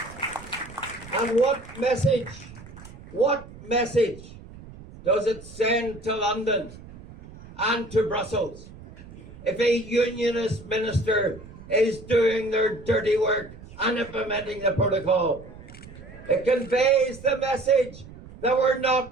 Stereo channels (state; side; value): noise; right; rumble, 18 dB below the sound